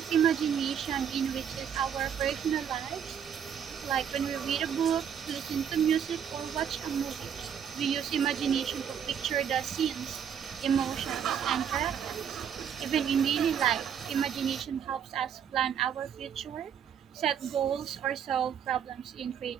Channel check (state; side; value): quieter; left; 8.2 dB